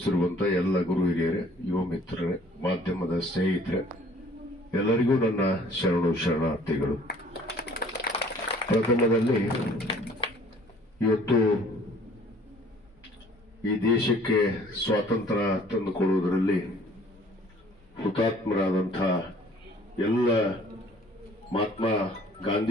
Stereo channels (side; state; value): both; normal; correlation 0.54